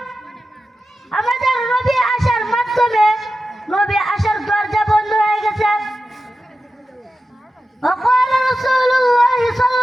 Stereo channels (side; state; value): both; normal; correlation 0.92